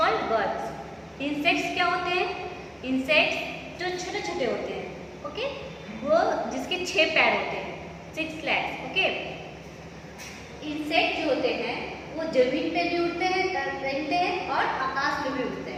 birds. Insects क्या होते हैं, इंसेक्ट्स जो छोटे छोटे होते हैं, ओके, वो जिसके 6 पैर होते हैं, 6 legs, ओके। इंसेक्ट जो होते हैं वो जमीन पे भी उड़ते हैं, रहते हैं और आकाश में भी उड़ते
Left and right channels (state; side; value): identical; both; correlation 1.00